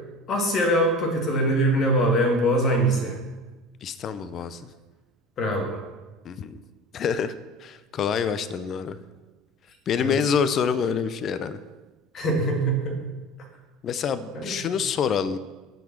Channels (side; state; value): both; normal; correlation 0.38